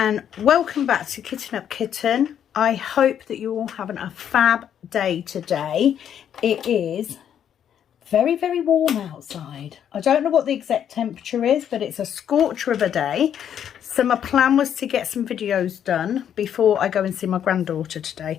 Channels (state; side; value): quieter; right; 9.3 dB